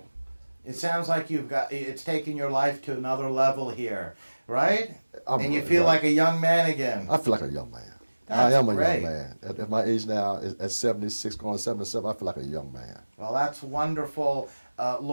It sounds like it's taken your life to another level here, right? And you feel like a young man again. I feel like a young man. That's I am a great. young man. At my age now, at 76, going 77, I feel like a young man. Well, that's wonderful.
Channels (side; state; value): both; inverted; correlation -1.00